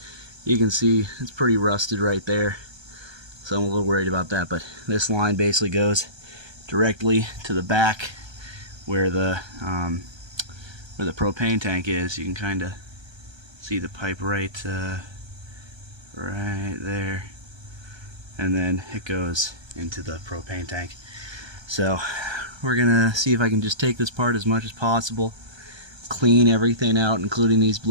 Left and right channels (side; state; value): left; late; 1.3 ms